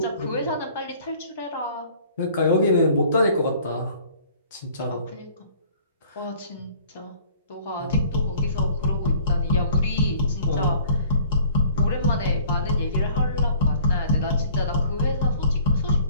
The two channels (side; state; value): both; inverted; correlation -0.53